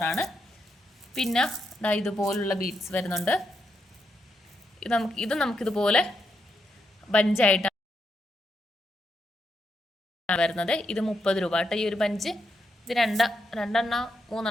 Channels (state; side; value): normal; both; correlation 0.81